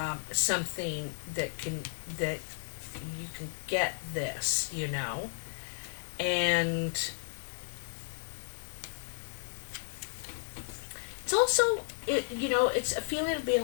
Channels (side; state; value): right; silent; digital silence